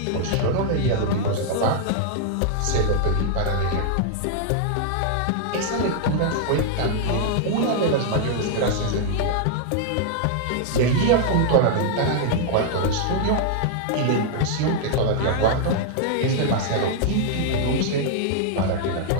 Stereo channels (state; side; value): different; both; correlation -0.01